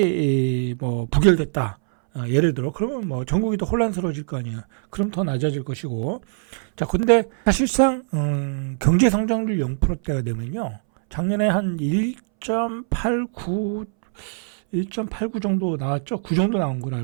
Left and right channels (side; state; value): left; silent; 63 dB below the other